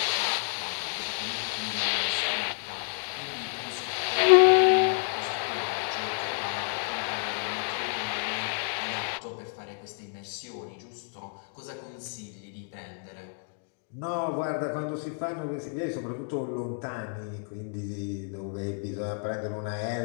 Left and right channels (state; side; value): silent; right; 58 dB below the other